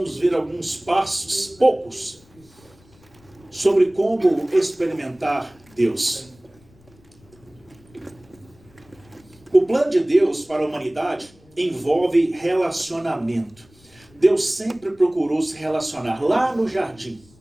ver alguns passos, poucos, sobre como experimentar Deus. O plano de Deus para a humanidade envolve relacionamento. Deus sempre procurou se relacionar. Lá no jardim,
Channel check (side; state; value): left; noise; rumble, 28 dB below the sound